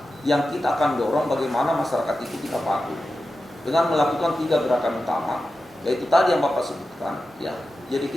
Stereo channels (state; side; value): normal; both; correlation 0.92